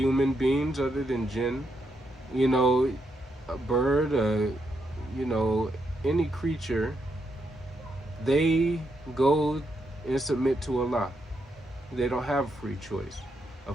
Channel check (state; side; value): normal; both; correlation 0.80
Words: beings other than jinn, a bird, any creature, they go and submit to Allah. They don't have free choice. A